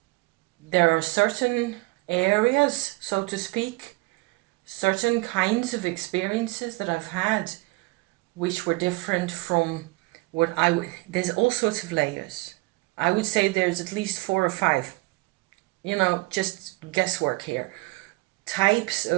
there are certain areas, so to speak, certain kinds of experiences that I've had which were different from what there's all sorts of layers. I would say there's at least 4 or 5, just guesswork here. Types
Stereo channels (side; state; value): left; quieter; 24.0 dB